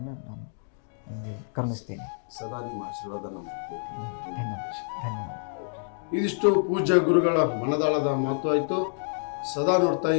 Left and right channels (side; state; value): right; silent; digital silence